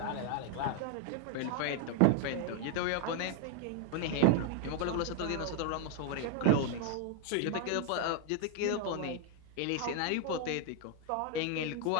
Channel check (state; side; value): different; both; correlation 0.01